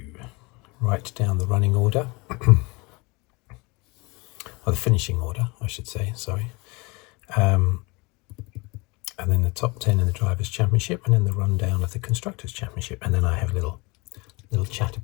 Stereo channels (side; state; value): right; quieter; 26.5 dB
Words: write down the running order, or the finishing order, I should say, sorry. And then the top 10 in the Drivers' Championship, and then the rundown of the Constructors' Championship, and then I have a little chat